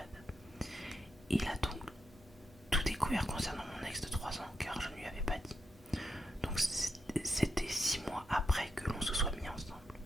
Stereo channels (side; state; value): both; normal; correlation 0.84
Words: Il a donc tout découvert concernant mon ex de 3 ans car je ne lui avais pas dit. Donc c'était 6 mois après que l'on se soit mis ensemble.